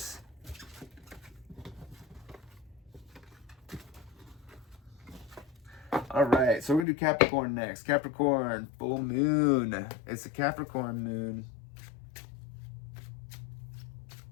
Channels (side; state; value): right; drops out; at 6.9 s